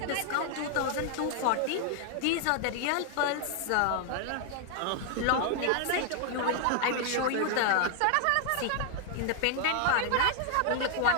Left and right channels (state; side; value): different; both; correlation 0.00